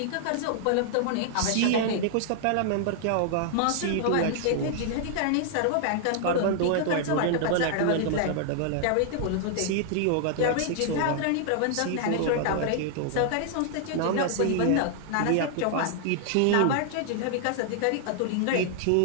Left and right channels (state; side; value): different; both; correlation -0.01